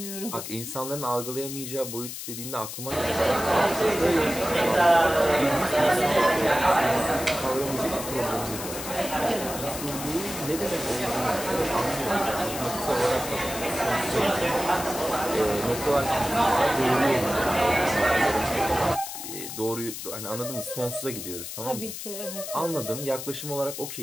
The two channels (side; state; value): left; noise; hiss, 8 dB below the sound